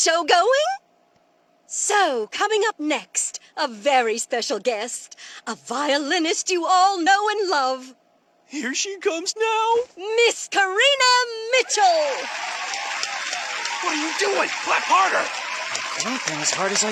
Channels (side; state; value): both; identical; correlation 1.00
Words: going? So, coming up next, a very special guest, a violinist you all know and love, Here she comes now. Miss Karina Mitchell. What are you doing? Clap harder. I'm clapping as hard as